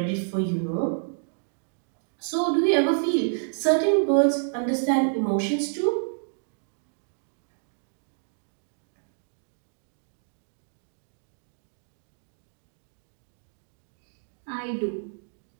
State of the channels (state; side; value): silent; left; digital silence